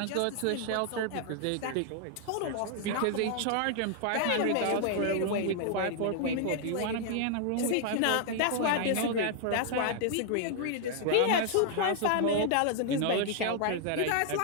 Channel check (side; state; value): both; different; correlation 0.00